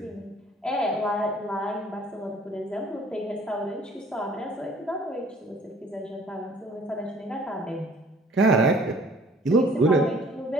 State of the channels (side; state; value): both; normal; correlation 0.54